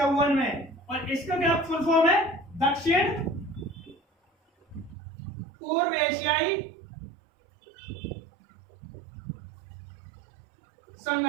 में। और इसका क्या फुल फॉर्म है? दक्षिण पूर्व एशियाई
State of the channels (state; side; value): drops out; left; at 5.0 s